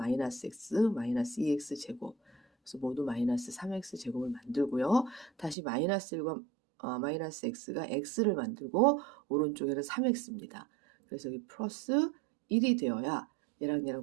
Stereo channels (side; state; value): left; drops out; at 5.6 s